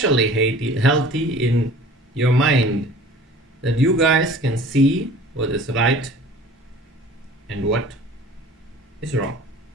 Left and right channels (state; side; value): normal; both; correlation 0.46